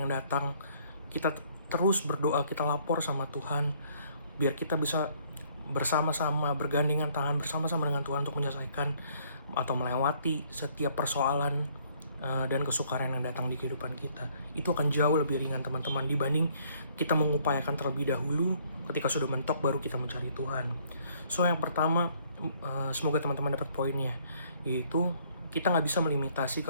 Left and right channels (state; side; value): inverted; both; correlation -0.63